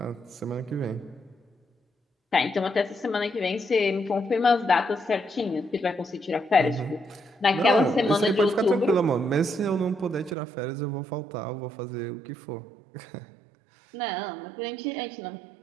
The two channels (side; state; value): left; drops out; at 10.4 s